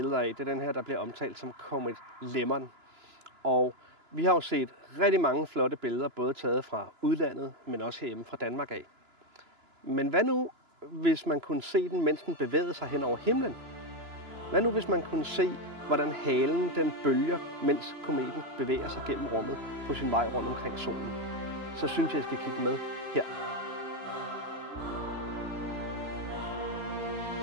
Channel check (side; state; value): left; late; 2.9 ms